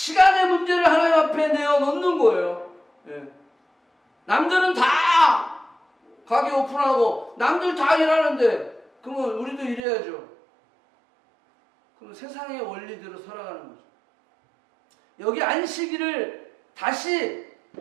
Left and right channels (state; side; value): drops out; left; at 9.8 s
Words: 문제를 하나님 앞에 내어놓는 거예요. 남들은 다 가게 오픈하고 남들 다 일하는데 그러면 우리도 일해야죠. 그럼 세상의 원리대로 살아가는 거죠. 여기 안식일을 다시